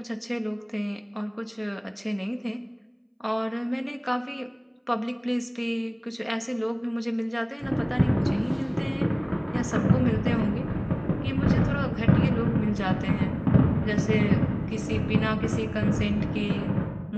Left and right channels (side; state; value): both; identical; correlation 1.00